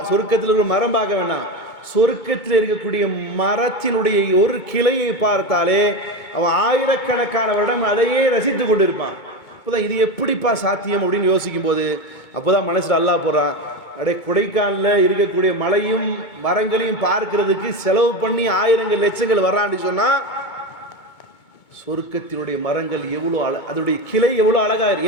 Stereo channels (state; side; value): late; right; 2.2 ms